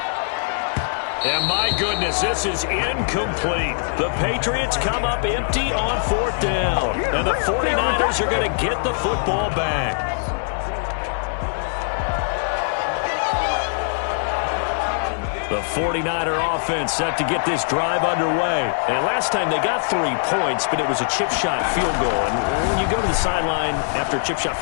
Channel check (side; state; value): right; silent; digital silence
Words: And my goodness, this is incomplete. The Patriots come up empty on 4th down. And the 49ers are going to get the football back. The 49er offense set to get this drive underway. And last time they got 3 points, but it was a chip shot field goal. And when you go to the sideline after a chip shot